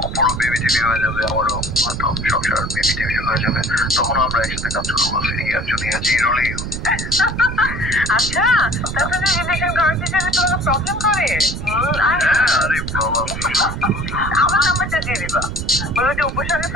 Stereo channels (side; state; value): right; noise; rumble, 6 dB below the sound